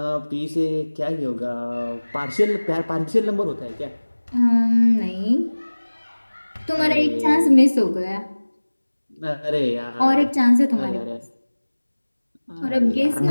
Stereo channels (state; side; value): inverted; both; correlation -1.00